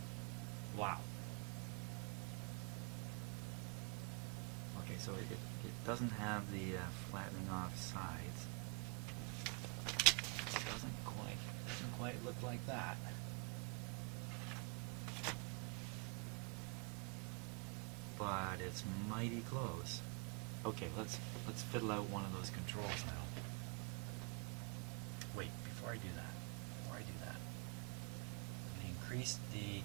Wow. Okay, so it doesn't have the flattening off sides. It doesn't quite look like that. But it's mighty close. Okay, let's fiddle out one of those controls now. Wait, before I do that, let me increase the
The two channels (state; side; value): quieter; left; 32.4 dB